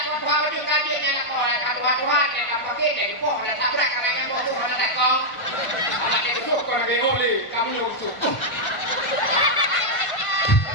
Tuhan baju kajian yang nak kodak Tuhan yang pakai dari poh dan tabrak karena yang boh ada tak kau. Anak dia besok kau nak oleh kamu lusuh.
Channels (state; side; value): late; right; 1.5 ms